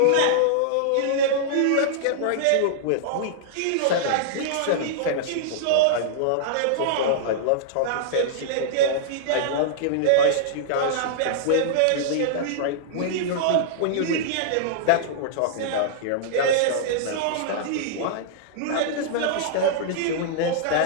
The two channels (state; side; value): different; both; correlation -0.02